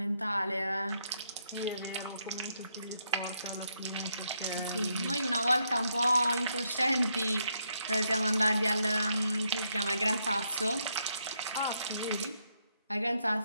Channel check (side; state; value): both; inverted; correlation -0.77